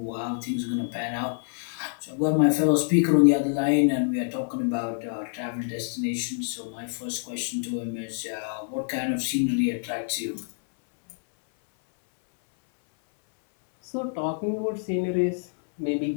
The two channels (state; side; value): silent; right; 60 dB below the other